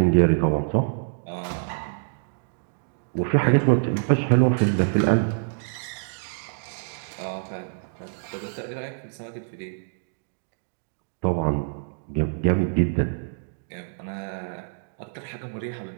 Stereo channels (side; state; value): left; silent; digital silence